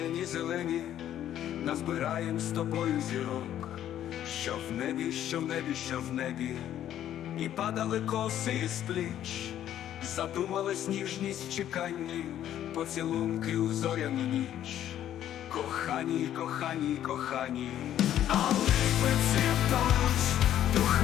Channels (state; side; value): quieter; right; 11.3 dB